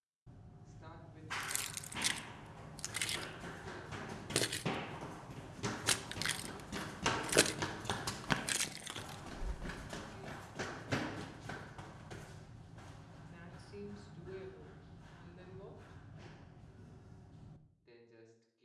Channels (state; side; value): identical; both; correlation 1.00